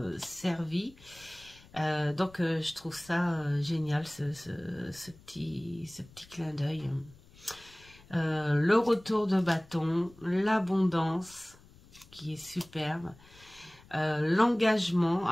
servis, donc je trouve ça génial ce petit clin d'œil. Le retour de bâton, l'abondance qui est superbe. L'engagement,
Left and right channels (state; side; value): noise; left; rumble, 24 dB below the sound